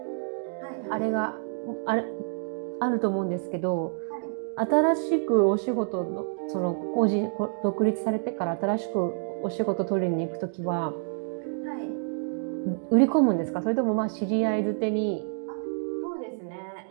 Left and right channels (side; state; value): left; silent; digital silence